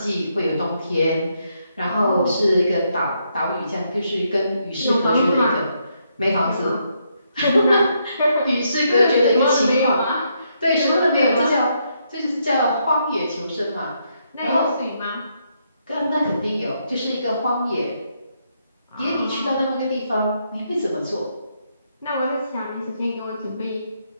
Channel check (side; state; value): both; inverted; correlation -0.77